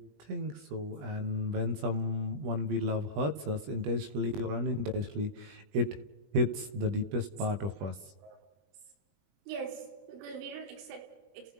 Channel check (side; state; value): left; late; 20 ms